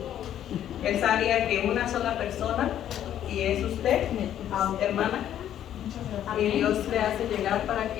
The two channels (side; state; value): right; quieter; 10.9 dB